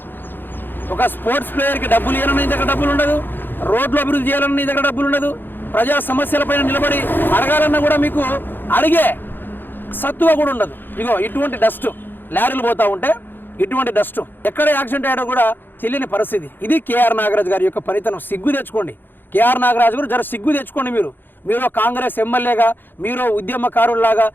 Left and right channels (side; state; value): right; late; 0.096 ms